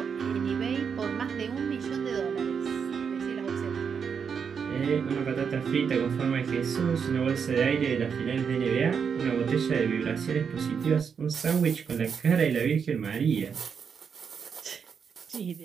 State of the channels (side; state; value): left; quieter; 6.6 dB